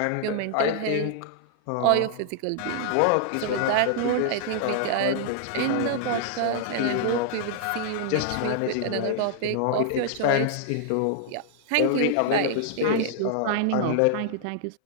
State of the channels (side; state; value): both; different; correlation -0.01